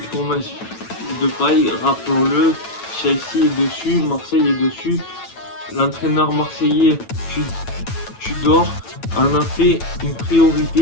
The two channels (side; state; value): right; late; 9.0 ms